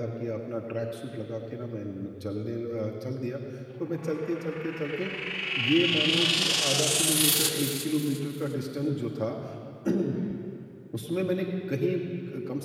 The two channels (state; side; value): identical; both; correlation 1.00